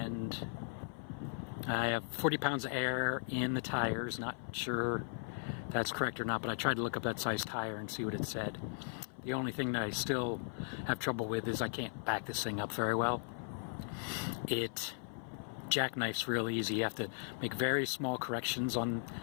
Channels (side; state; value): right; silent; 53 dB below the other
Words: I have 40 pounds of air in the tires. Not sure that's correct or not, but I tried to look up that size tire and see what it said. The only thing that I still have trouble with is I can't back this thing up very well. It jackknifes real easy. You have to make very small corrections on